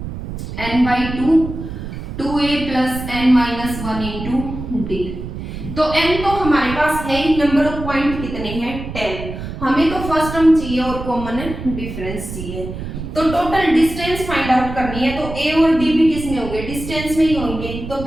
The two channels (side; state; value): right; noise; rumble, 8 dB below the sound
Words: n/2 2a + n-1 into D. तो n तो हमारे पास है ही, नंबर ऑफ पॉइंट कितने हैं 10, हमें तो फर्स्ट टर्म चाहिए और कॉमन डिफरेंस चाहिए। तो टोटल डिस्टेंस फाइंड आउट करनी है, तो a और d भी किस में होंगे, डिस्टेंस में ही होंगे। तो